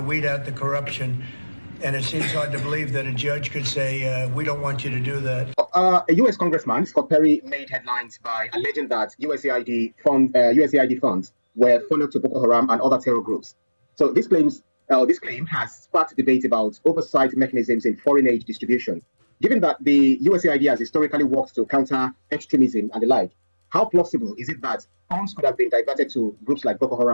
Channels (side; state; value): both; inverted; correlation -1.00